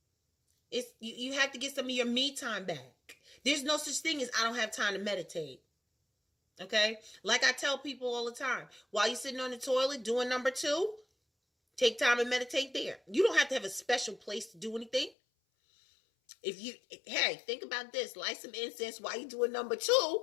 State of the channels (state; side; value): drops out; right; at 15.2 s